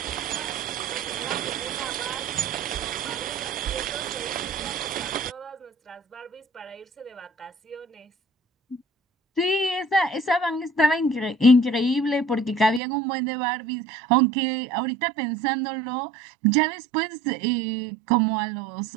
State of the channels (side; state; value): left; drops out; at 12.8 s